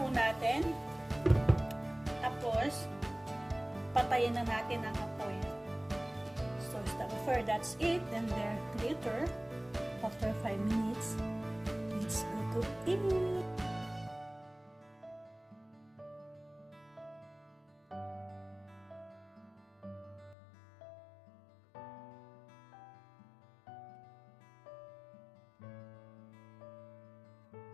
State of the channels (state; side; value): drops out; right; at 20.4 s